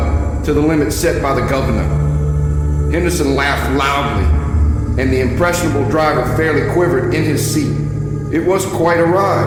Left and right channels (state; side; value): identical; both; correlation 1.00